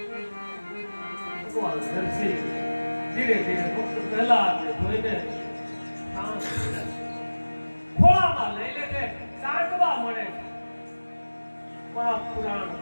ભગવાન નરસિંહ ધીરે ધીરે ફક્ત પ્રહલાદને જોઈને શાંત થઈ જાય. ખોળામાં લઈ લે છે, સાંકવા મળે છે. પુરાણ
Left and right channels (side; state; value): both; inverted; correlation -1.00